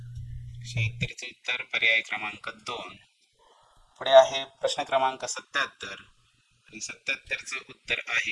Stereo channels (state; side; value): identical; both; correlation 1.00